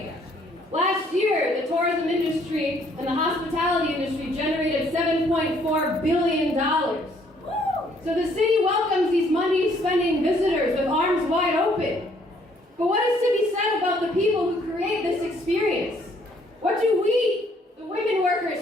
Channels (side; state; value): both; normal; correlation 0.64